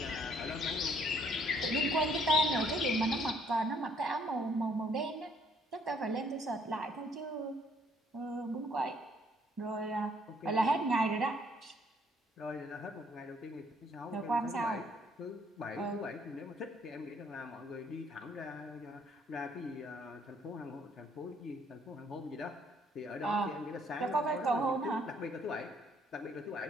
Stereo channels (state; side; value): normal; both; correlation 0.65